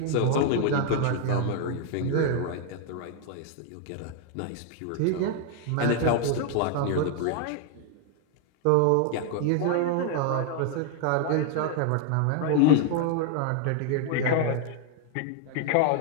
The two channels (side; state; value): both; different; correlation 0.00